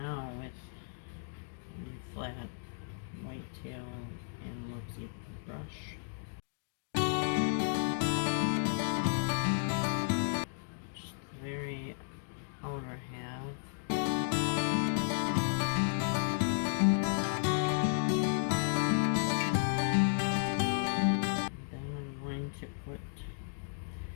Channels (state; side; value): silent; right; digital silence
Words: with flat whitetail and Luxie brush. Just the very outer half. Then I'm going to put